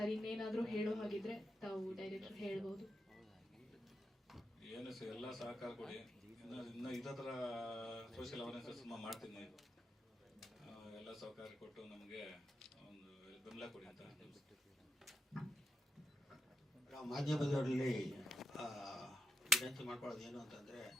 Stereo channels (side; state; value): both; normal; correlation 0.85